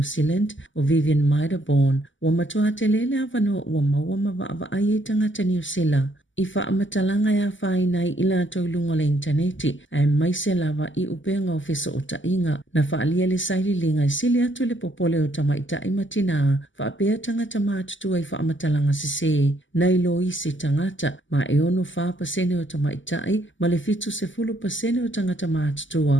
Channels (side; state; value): right; late; 0.55 ms